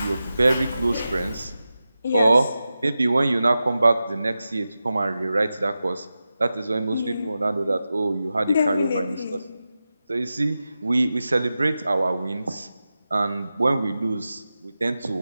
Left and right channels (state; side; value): inverted; both; correlation -0.93